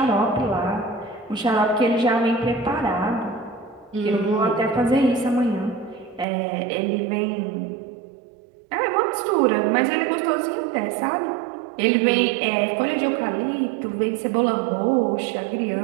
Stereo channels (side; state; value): left; drops out; at 6.2 s